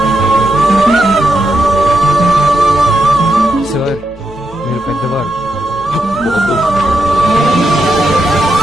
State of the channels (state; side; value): normal; both; correlation 0.84